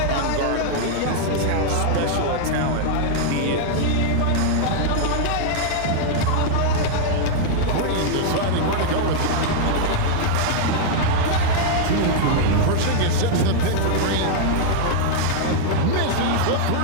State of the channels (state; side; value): different; both; correlation -0.01